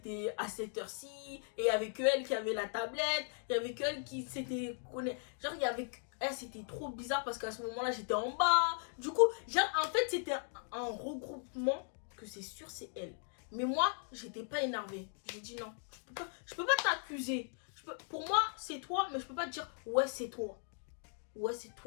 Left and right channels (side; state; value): right; silent; 52 dB below the other